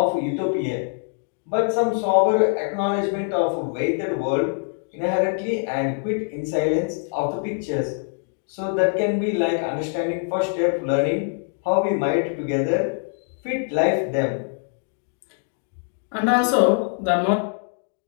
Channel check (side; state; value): right; silent; 58 dB below the other